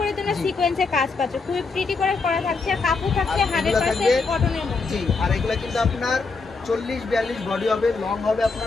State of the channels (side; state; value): right; quieter; 4.3 dB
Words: তোমরা সিকোয়েন্সে কাজ পাচ্ছ, খুব প্রিটি করে করা থাকছে। কাপড় থাকছে 100% কটনের মধ্যে। জি, আর এগুলা কিন্তু আপনার 40-42 বডি হবে, লং হবে